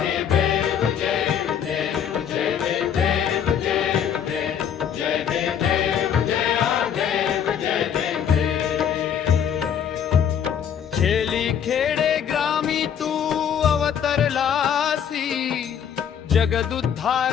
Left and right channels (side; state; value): right; quieter; 8.5 dB